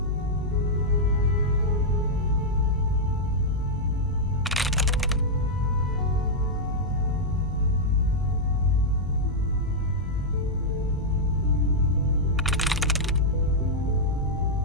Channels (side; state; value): both; normal; correlation -0.05